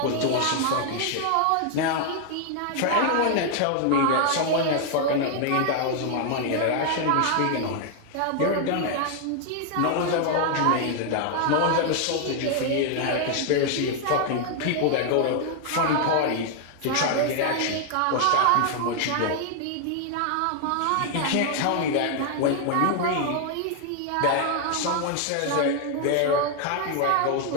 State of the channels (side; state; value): both; different; correlation 0.00